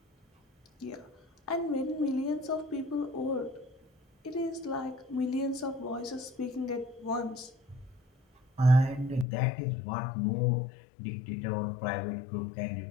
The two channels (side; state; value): right; drops out; at 9.2 s